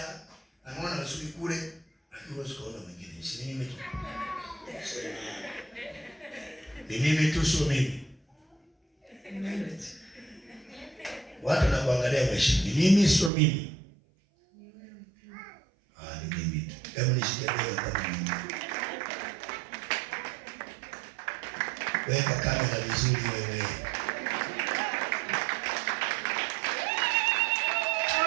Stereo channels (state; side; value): drops out; left; at 13.3 s